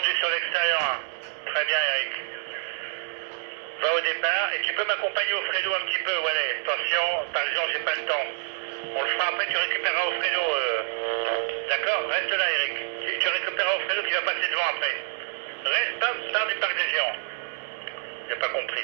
sur l'extérieur 1. Très bien Eric. Va au départ et tu peux m'accompagner au Fredo un petit peu, voilà. Attention, par exemple, j'ai pas le temps. On le fera après, tu récupéreras au Fredo. D'accord? Reste là Eric. Tu récupéreras au Fredo qui va passer devant après. Reste, pars du parc des géants. J'ai pas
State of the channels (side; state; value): left; silent; digital silence